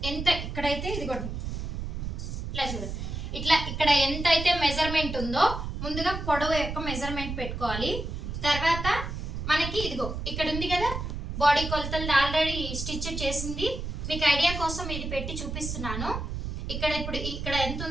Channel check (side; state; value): right; noise; rumble, 5 dB below the sound